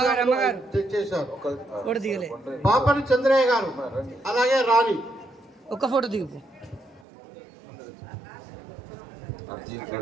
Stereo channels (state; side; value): drops out; left; at 7.1 s